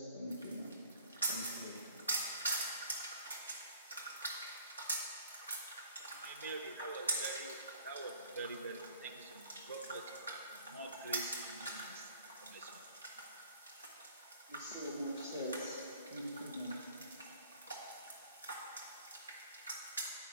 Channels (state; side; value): inverted; both; correlation -0.52